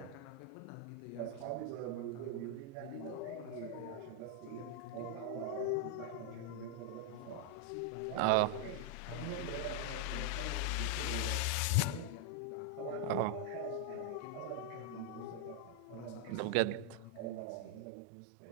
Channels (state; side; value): different; both; correlation 0.00